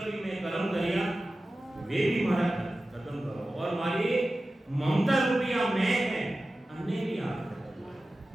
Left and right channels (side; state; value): both; normal; correlation 0.95